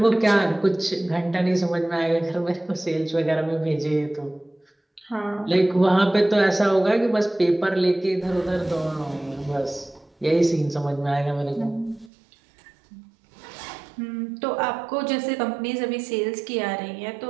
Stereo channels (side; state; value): left; drops out; at 12.1 s